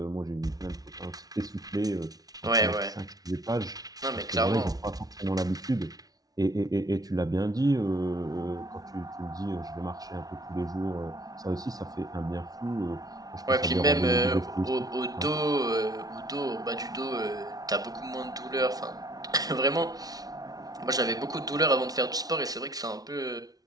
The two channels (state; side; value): late; left; 0.18 ms